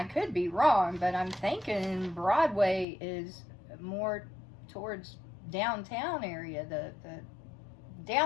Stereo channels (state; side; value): drops out; right; at 2.9 s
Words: could be wrong, but I'm thinking Broadway is more towards downtown area, the